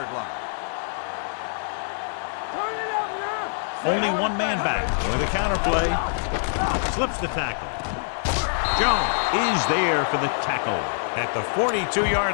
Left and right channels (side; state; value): right; silent; digital silence